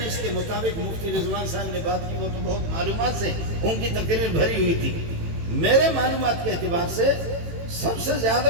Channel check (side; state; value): left; late; 18 ms